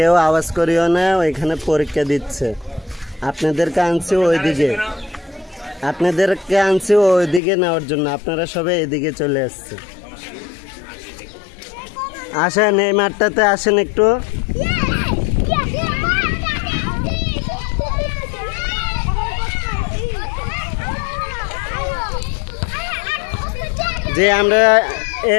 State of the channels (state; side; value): drops out; right; at 7.4 s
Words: আওয়াজ করিও না, ওইখানে পরীক্ষা দিচ্ছে। আপনাদেরকে আনছি ওইদিকে নেওয়ার জন্য, আপনারা সবাই এদিকে চলে আসছে। আসেন এই মাঠটাতে আসেন একটু। যে আমরা